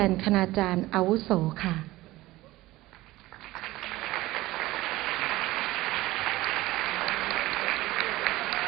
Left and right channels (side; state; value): left; quieter; 17.9 dB